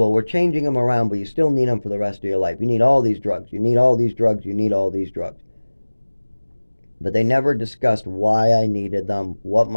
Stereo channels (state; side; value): inverted; both; correlation -1.00